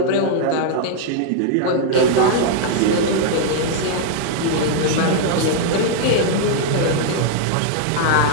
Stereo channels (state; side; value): different; both; correlation -0.01